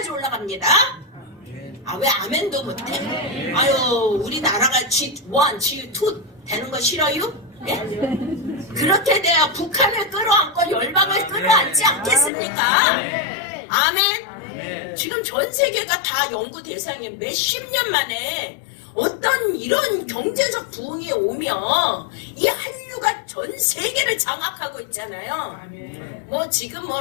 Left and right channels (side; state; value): right; drops out; at 12.3 s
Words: 올라갑니다. 아, 왜 아멘도 못해? 아유, 우리나라가 G1, G2 되는 거 싫어요? 예? 그렇게 돼야 북한을 끌어안고 열방을 끌어안지 않겠습니까? 아멘? 지금 전 세계가 다 연구 대상에 몇십 년 만에 어떤 이런 경제적 부흥이 오면 이 한류가 전 세계를 장악하고 있잖아요. 뭐 지금 뭐